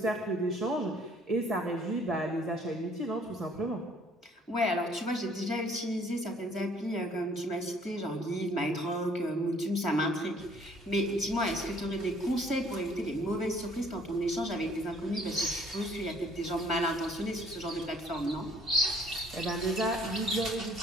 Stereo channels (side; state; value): both; normal; correlation 0.59